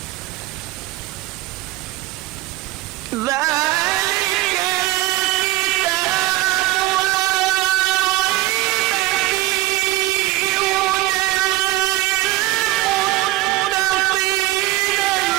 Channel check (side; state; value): left; quieter; 17.7 dB